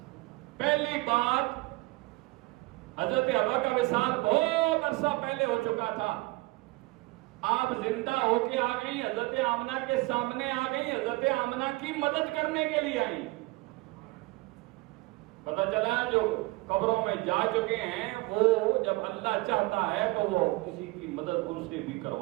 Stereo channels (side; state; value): left; quieter; 22.7 dB